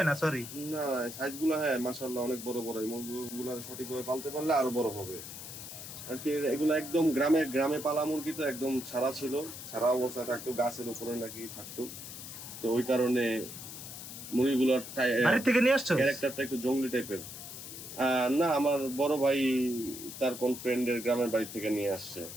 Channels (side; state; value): left; noise; hiss, 11 dB below the sound